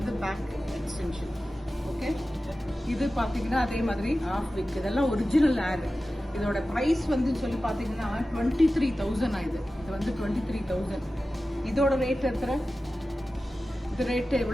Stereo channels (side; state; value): both; normal; correlation 0.95